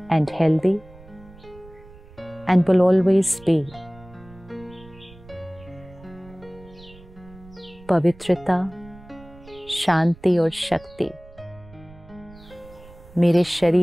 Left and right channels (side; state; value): right; noise; rumble, 22 dB below the sound